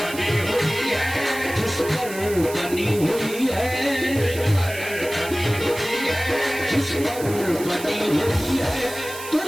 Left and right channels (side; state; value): right; noise; hiss, 12 dB below the sound